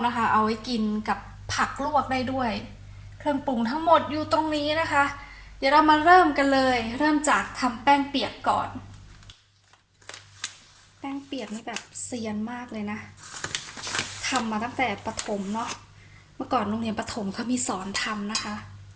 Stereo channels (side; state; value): both; identical; correlation 1.00